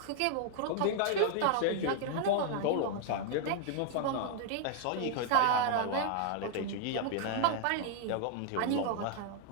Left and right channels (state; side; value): different; both; correlation 0.00